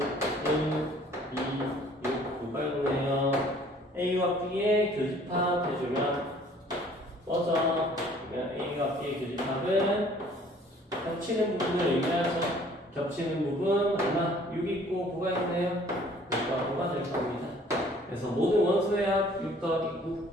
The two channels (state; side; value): normal; both; correlation 0.55